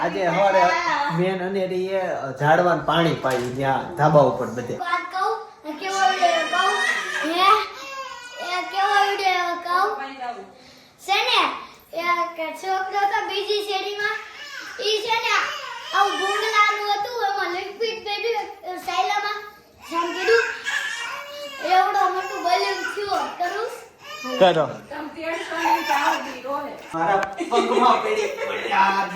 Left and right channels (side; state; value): both; identical; correlation 1.00